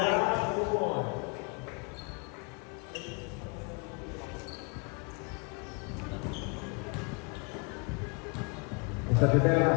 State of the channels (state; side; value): quieter; right; 32.5 dB